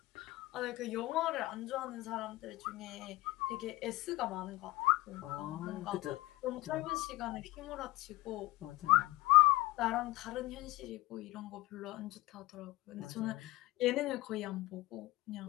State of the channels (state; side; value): quieter; right; 19.7 dB